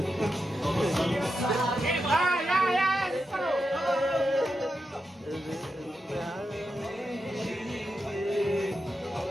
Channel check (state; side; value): normal; both; correlation 0.87